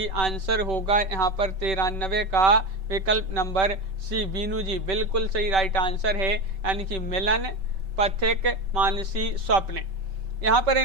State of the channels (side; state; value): left; late; 5.2 ms